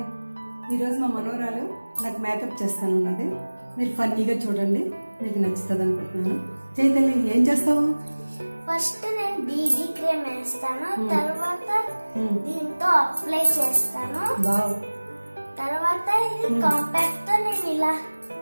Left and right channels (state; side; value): inverted; both; correlation -1.00